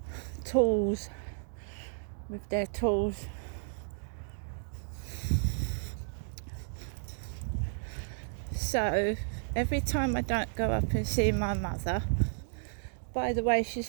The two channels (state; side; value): silent; left; digital silence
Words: Tools. With their tools. So every time I don't go up and see my mother, by the way,